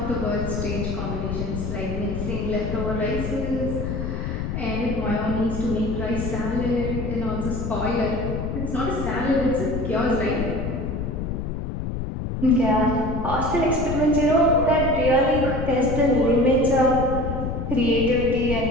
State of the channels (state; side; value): noise; left; rumble, 3 dB below the sound